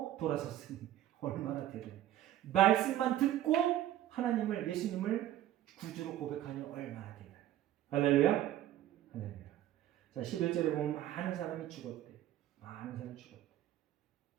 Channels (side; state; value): left; quieter; 12.8 dB